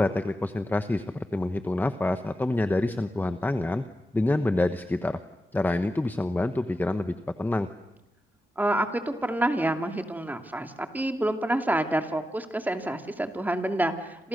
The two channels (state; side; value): normal; both; correlation 0.90